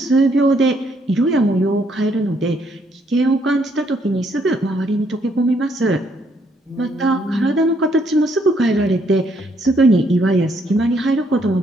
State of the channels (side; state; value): both; normal; correlation 0.70